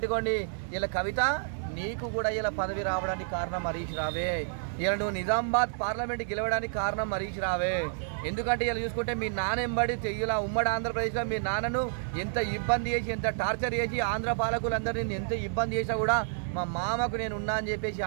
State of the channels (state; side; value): silent; left; digital silence